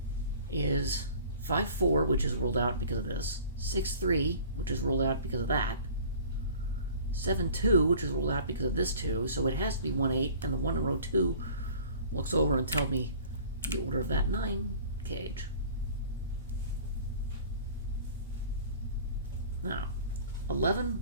is 5-4, which is ruled out because of this. 6-3, which is ruled out because of that. 7-2, which is ruled out because of this 2, so it has to be 1-8, and the 1 in row 2 looks over and tells me the order of that 9 cage. Now,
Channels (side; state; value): both; inverted; correlation -0.45